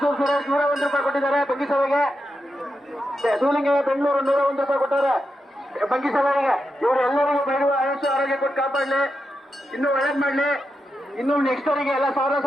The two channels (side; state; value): both; normal; correlation 0.87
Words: ಸುರೇಶ್ 101 ರೂಪಾಯಿ ಕೊಟ್ಟಿದ್ದಾರೆ ಬಂಗಿಸಭೆಗೆ. ಸೂಲಿಂಗ ಬೆಂಗಳೂರು 101 ರೂಪಾಯಿ ಕೊಟ್ಟಾರೆ ಬಂಗಿಸಭೆಗೆ. ಇವರು ಎಲ್ಲರಿಗೂ ಬೈರುವ ಆಯುಷ ಆರೋಗ್ಯ ಕೊಟ್ಟು ಕಾಪಾಡಲಿ, ಇನ್ನೂ ಒಳ್ಳೇದ್ ಮಾಡ್ಲಿ, ಇನ್ನು ನೆಕ್ಸ್ಟ್ ಅವರಿಗೆ ಎಲ್ಲ